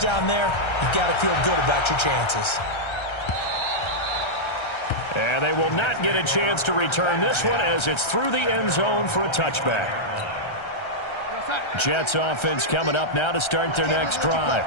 there, you got to feel good about your chances. And they will not get a chance to return this one as it's through the end zone for a touchback. Jets offense coming up now to start their next drive.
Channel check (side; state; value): right; late; 1.3 ms